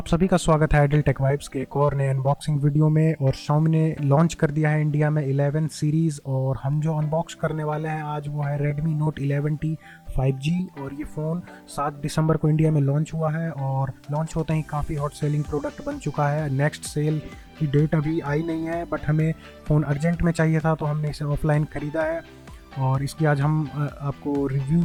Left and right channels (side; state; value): both; identical; correlation 1.00